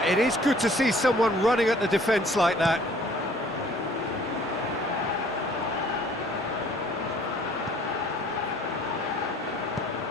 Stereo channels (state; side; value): normal; both; correlation 0.55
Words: it is good to see someone running at the defence like that.